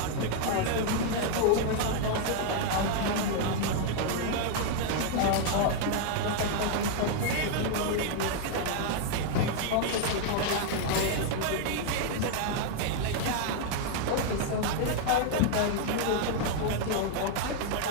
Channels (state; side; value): different; both; correlation 0.00